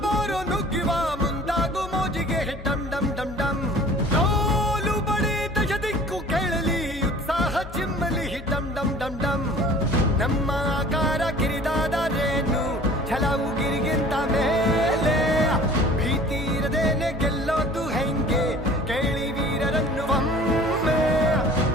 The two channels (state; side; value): normal; both; correlation 0.47